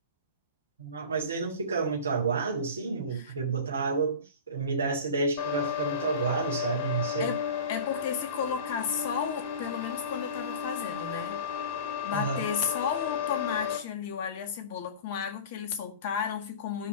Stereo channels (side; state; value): both; inverted; correlation -0.34